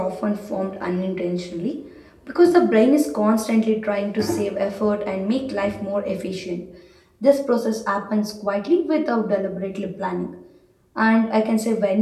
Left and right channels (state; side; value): identical; both; correlation 1.00